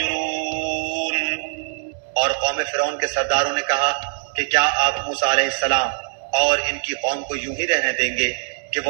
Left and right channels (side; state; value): left; silent; digital silence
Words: اور قوم فرعون کے سرداروں نے کہا کہ کیا آپ موسیٰ علیہ السلام اور ان کی قوم کو یوں ہی رہنے دیں گے کہ